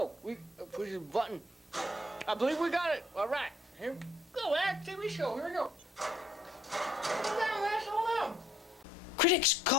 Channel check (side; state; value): both; normal; correlation 0.66